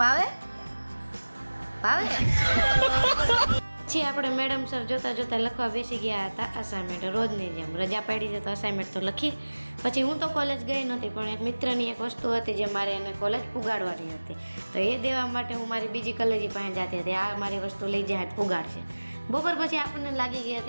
ભાવે? ભાવે? પછી આપણે મેડમ સર જોતા જોતા લખવા બેસી ગયા હતા અસાઇનમેન્ટ. રોજની જેમ રજા પાડી છે તો અસાઇનમેન્ટ તો લખી. પછી હું તો કોલેજ ગઈ નહોતી, પણ એક મિત્રની એક વસ્તુ હતી જે મારે એને કોલેજ પુગાડવાની હતી. તો એ દેવા માટે હું મારી બીજી કલેજી પાસે જતી હતી. આ મારી વસ્તુ લઈ જાય પુગાડશે. બપોર પછી આપણને લાગી ગઈ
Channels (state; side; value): inverted; both; correlation -1.00